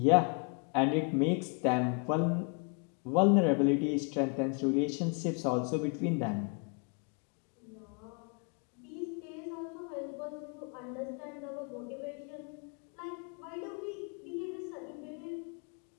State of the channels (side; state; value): right; quieter; 37.5 dB